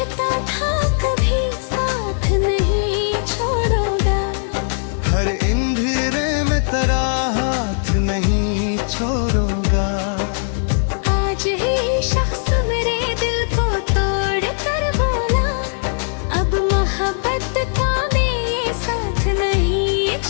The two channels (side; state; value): right; silent; digital silence